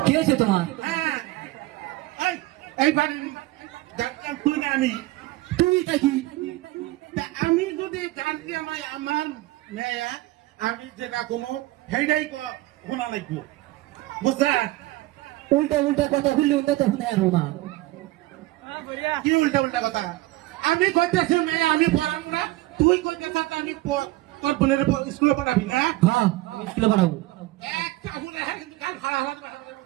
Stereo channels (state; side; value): quieter; left; 18.5 dB